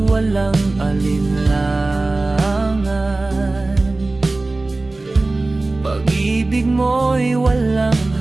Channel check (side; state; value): left; quieter; 3.1 dB